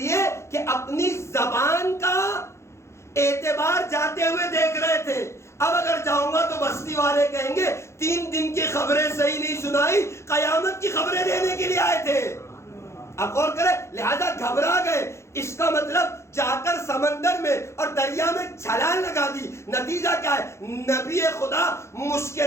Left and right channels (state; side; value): late; right; 0.13 ms